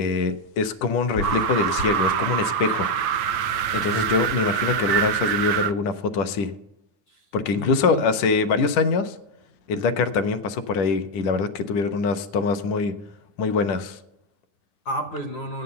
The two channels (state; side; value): late; right; 10 ms